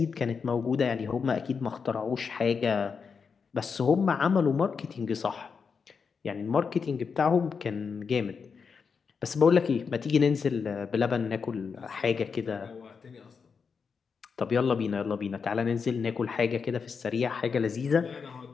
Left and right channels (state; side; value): quieter; right; 5.7 dB